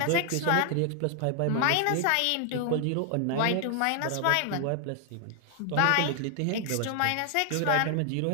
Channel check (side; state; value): both; different; correlation 0.00